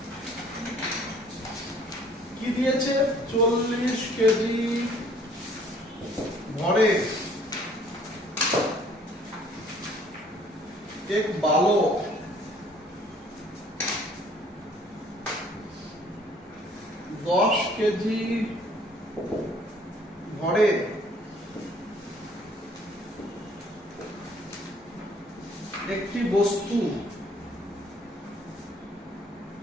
কি দিয়েছে 40 কেজি ভরে এক বালক 10 কেজি ভরে একটি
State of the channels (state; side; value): normal; both; correlation 0.58